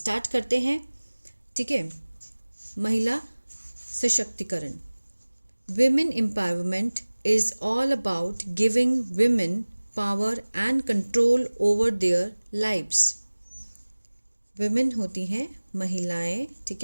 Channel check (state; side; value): inverted; both; correlation -1.00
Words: करते हैं। ठीक है, महिला सशक्तिकरण। Women empowerment is all about giving women power and control over their lives. women होती हैं महिलाएं। ठीक